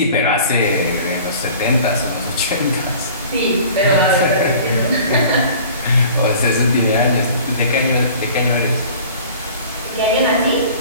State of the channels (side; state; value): both; inverted; correlation -0.46